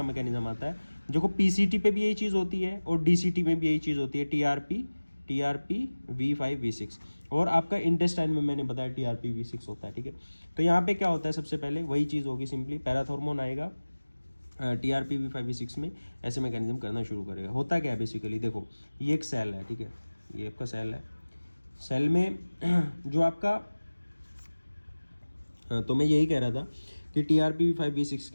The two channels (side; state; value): both; inverted; correlation -1.00